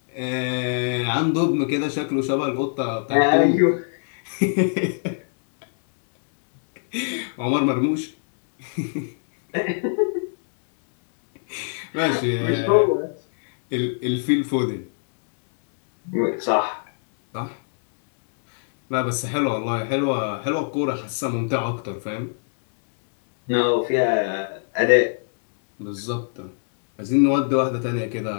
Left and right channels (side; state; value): right; silent; digital silence